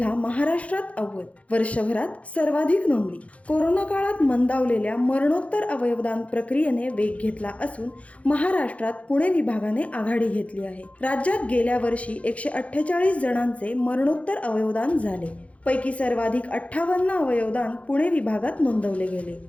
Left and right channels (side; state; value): right; late; 0.064 ms